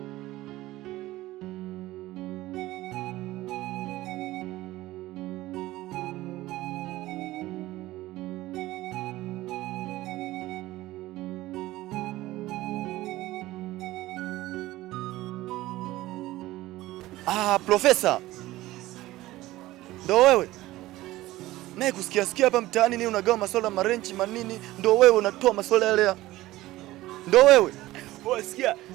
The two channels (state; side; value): quieter; left; 17.1 dB